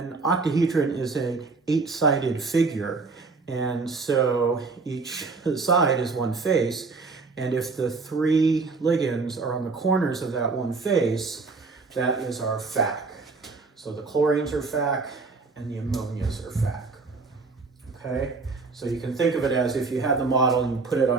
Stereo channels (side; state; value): left; quieter; 4.2 dB